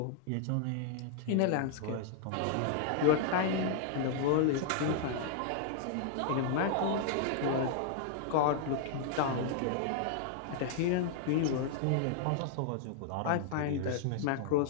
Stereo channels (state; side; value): different; both; correlation -0.01